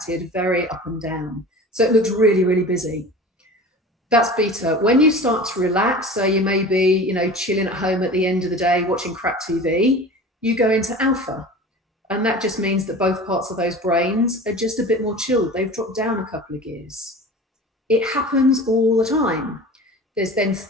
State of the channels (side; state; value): both; normal; correlation 0.37